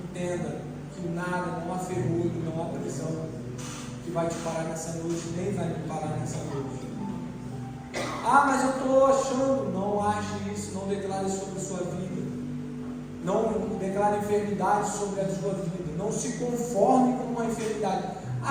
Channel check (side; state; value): both; identical; correlation 1.00